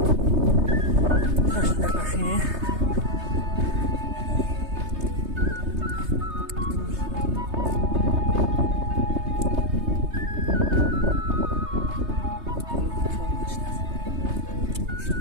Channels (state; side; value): late; left; 3.3 ms